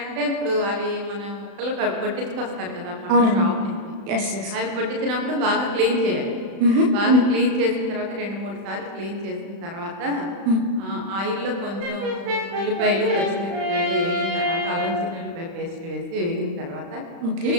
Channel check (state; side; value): late; left; 35 ms